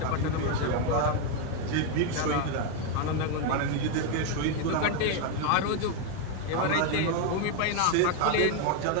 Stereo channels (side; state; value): both; different; correlation 0.01